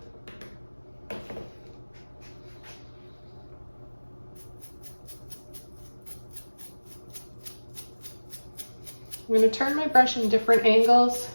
I'm going to turn my brush in different angles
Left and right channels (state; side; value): inverted; both; correlation -1.00